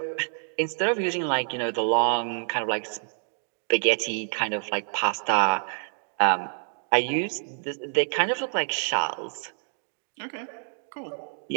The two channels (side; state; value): left; silent; 60 dB below the other